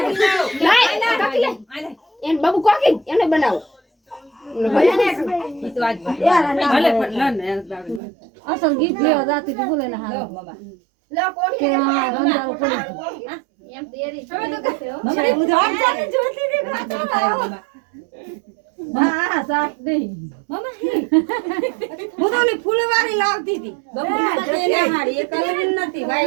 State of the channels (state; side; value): drops out; left; at 8.0 s